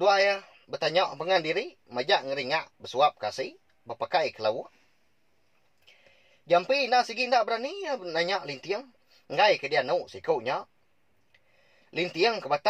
ya. Bertanya ke pengandiri. Majak ngeringak. Bersuap kasih. Berpakai kelawak. Jampi nak segi ndak berani. Ya, nanya lintiang. Ngai ke dia nu sikaunya. Lintiang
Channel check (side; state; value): both; identical; correlation 1.00